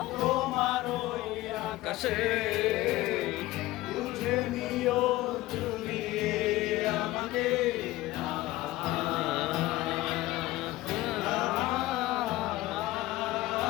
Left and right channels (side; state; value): right; quieter; 17.6 dB